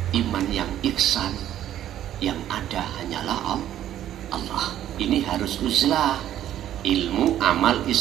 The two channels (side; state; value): left; quieter; 11.7 dB